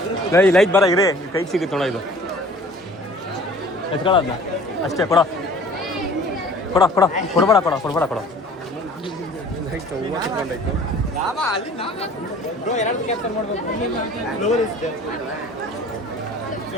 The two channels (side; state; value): both; normal; correlation 0.48